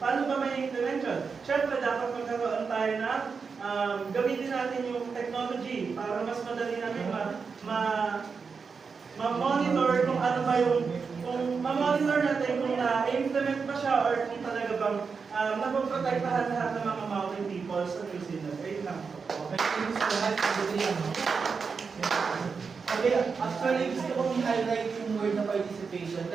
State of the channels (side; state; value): left; quieter; 5.3 dB